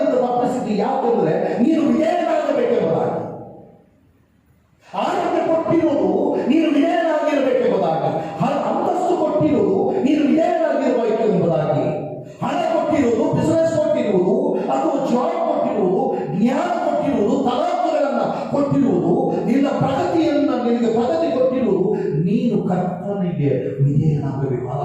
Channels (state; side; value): identical; both; correlation 1.00